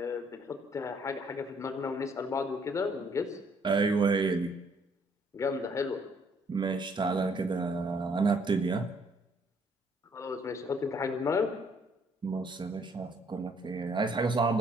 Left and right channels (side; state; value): both; normal; correlation 0.65